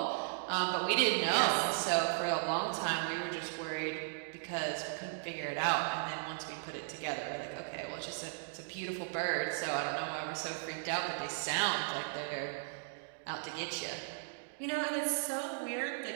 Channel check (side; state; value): left; silent; digital silence